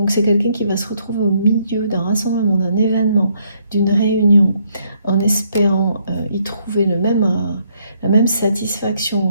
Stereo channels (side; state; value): both; inverted; correlation -0.71